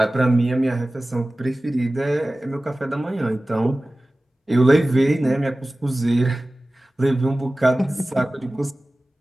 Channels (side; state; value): both; normal; correlation 0.97